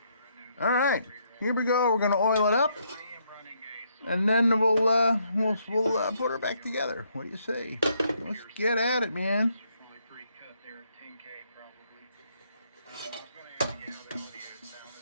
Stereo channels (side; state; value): both; inverted; correlation -0.73